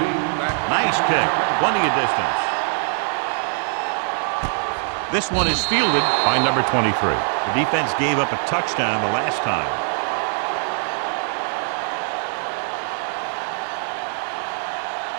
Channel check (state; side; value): silent; left; 55 dB below the other